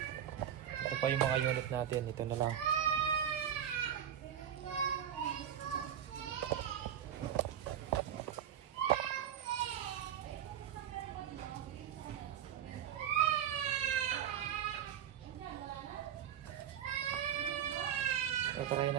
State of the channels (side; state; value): left; quieter; 9.7 dB